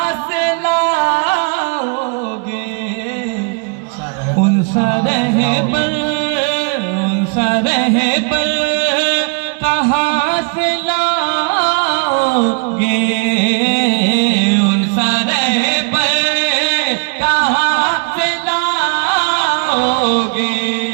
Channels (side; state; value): left; quieter; 35.8 dB